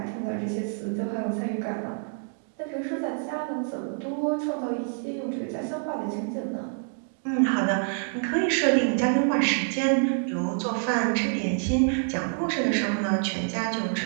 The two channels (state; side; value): silent; left; 60 dB below the other